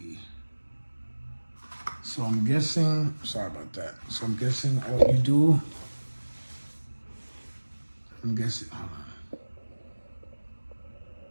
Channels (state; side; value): inverted; both; correlation -1.00